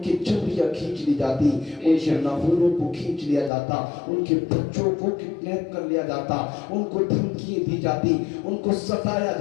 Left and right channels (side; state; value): right; drops out; at 3.5 s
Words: چمڑیاں کھینچ لی جاتی، ان کے ناخنوں کو کھینچ لیا جاتا، ان کے بچوں کو کڈنیپ کر لیا جاتا، ان کو دھمکیاں دی جاتی، ان کو ستایا